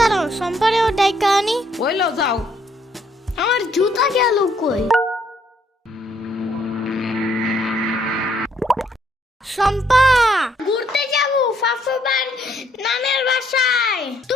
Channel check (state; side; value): normal; both; correlation 0.69